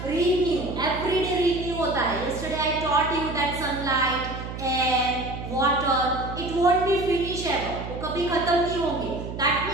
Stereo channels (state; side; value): noise; right; hum, 8 dB below the sound